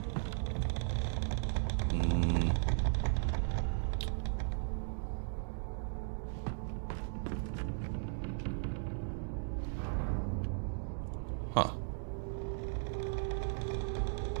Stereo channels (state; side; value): silent; left; digital silence